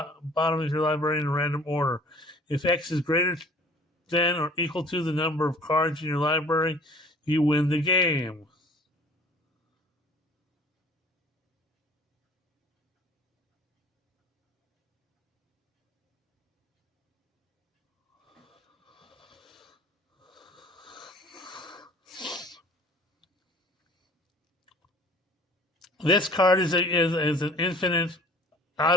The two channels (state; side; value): normal; both; correlation 0.50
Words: of your library in a random order. If X is greater than or equal to the number of cards in your library, you win the game. This card is an infinite